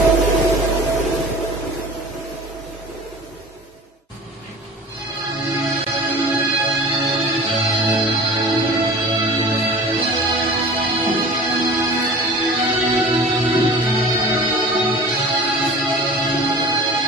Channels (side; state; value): both; normal; correlation 0.41